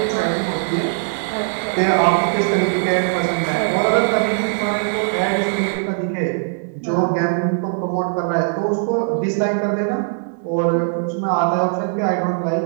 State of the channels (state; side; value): silent; left; digital silence